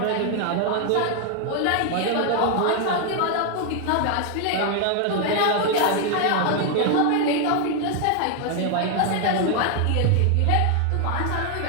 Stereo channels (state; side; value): different; both; correlation 0.00